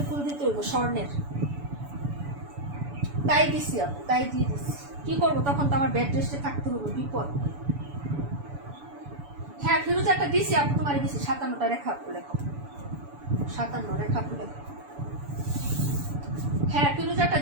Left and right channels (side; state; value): left; late; 7.0 ms